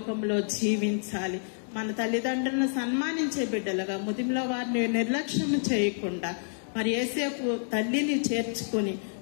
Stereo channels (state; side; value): silent; right; digital silence